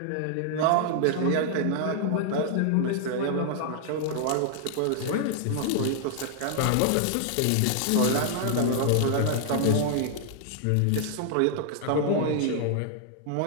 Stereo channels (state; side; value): different; both; correlation -0.01